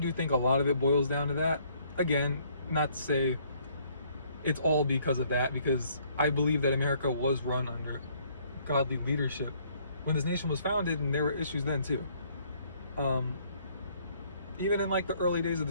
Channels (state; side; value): inverted; both; correlation -0.64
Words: think a lot of it boils down to that. Again, not to say it's all because of that, because I believe that America was run under godly leadership when this nation was founded, and there were issues then too. Even in like the early days of